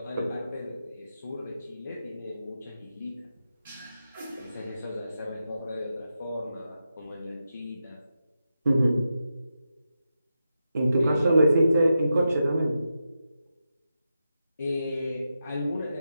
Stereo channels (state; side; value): inverted; both; correlation -0.88